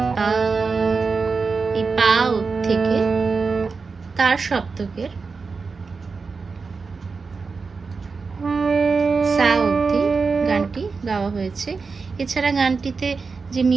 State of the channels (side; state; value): left; quieter; 4.7 dB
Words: পা, এই পা থেকে তার সপ্তকের সা অবধি গানটি গাওয়া হয়েছে। এছাড়া গানটিতে যে